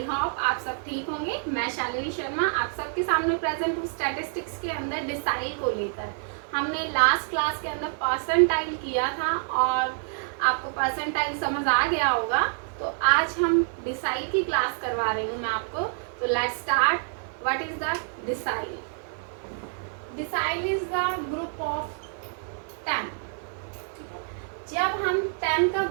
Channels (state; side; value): silent; left; 60 dB below the other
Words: होप आप सब ठीक होंगे। मैं शालिनी शर्मा आप सबके सामने प्रेजेंट हूँ स्टैटिस्टिक्स के अंदर डिसाइल को लेकर। हमने लास्ट क्लास के अंदर परसेंटाइल किया था और आपको परसेंटाइल समझ आ गया होगा। तो आज हम डिसाइल की क्लास करवा रही हूँ मैं आपको। तो let's start. What is the decile? Decile is the group of 10। जब हम 10 का